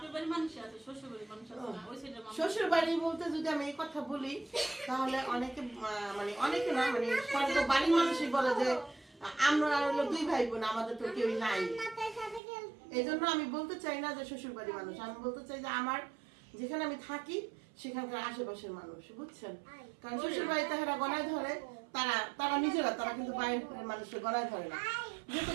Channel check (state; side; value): drops out; left; at 12.4 s